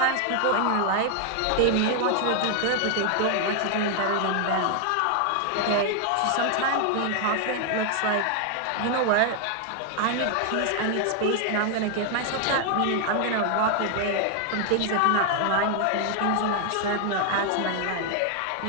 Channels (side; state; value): both; different; correlation 0.00